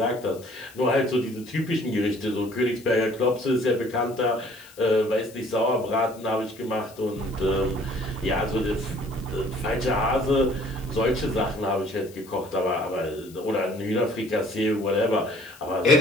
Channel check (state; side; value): noise; left; hiss, 23 dB below the sound